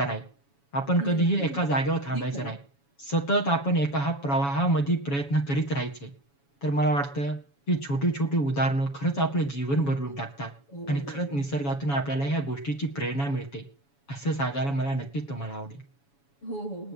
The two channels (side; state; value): right; late; 7.1 ms